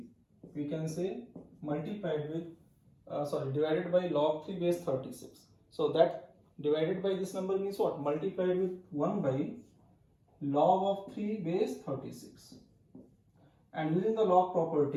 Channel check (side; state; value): both; identical; correlation 1.00